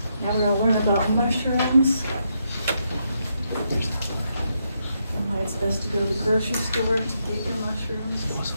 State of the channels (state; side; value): inverted; both; correlation -0.80